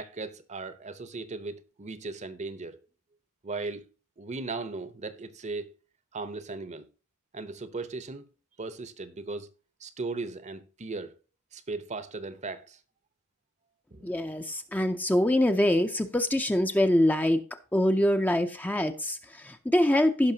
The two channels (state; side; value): normal; both; correlation 0.84